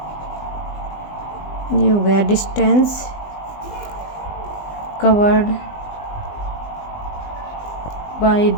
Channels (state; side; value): late; right; 20 ms